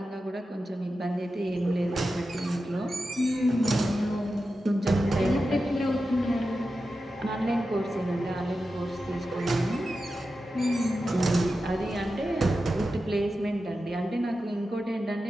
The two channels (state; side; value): normal; both; correlation 0.91